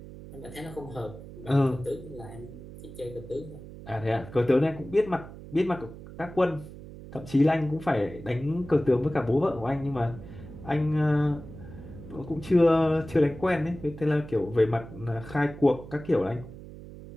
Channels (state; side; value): noise; right; hum, 15 dB below the sound